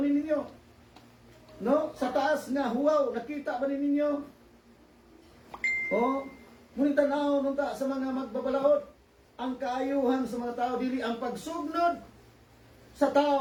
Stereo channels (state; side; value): identical; both; correlation 1.00